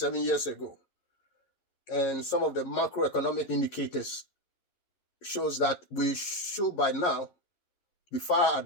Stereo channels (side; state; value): right; late; 11 ms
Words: years ago. And some of the macroeconomic indicators shows that we should by now be far